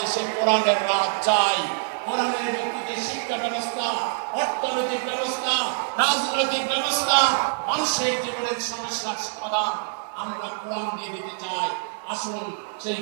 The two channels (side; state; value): left; silent; digital silence